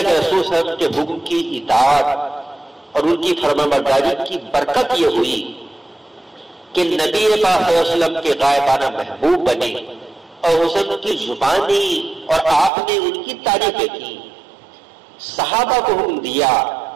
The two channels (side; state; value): left; drops out; at 12.7 s